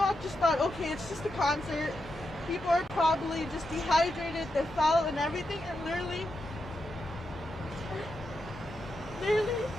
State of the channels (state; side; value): normal; both; correlation 0.86